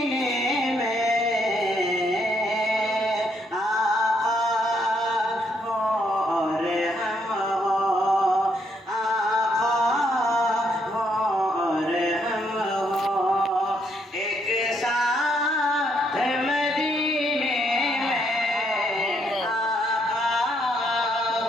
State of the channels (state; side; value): normal; both; correlation 0.73